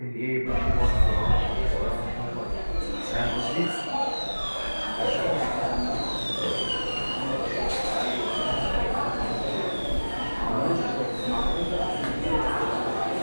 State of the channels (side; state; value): both; inverted; correlation -1.00